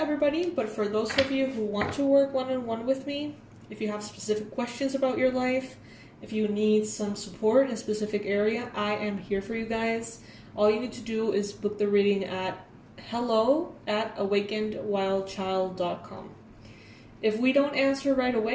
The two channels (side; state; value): both; identical; correlation 1.00